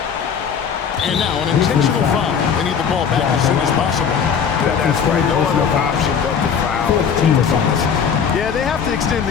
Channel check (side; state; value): right; quieter; 7.0 dB